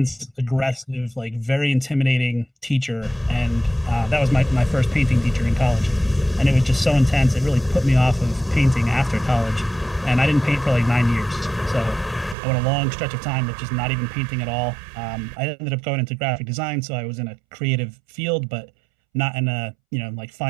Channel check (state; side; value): drops out; left; at 12.4 s